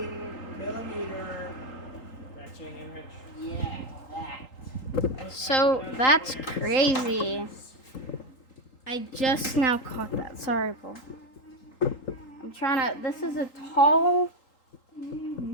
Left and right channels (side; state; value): right; late; 3.8 ms